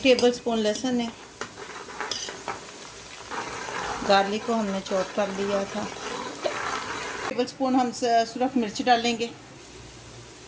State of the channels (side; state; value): both; identical; correlation 1.00